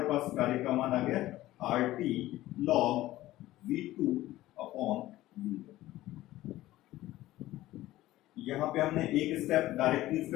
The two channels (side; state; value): right; quieter; 15.9 dB